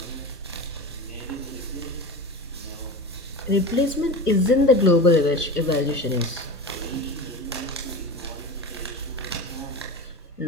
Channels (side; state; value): both; normal; correlation 0.29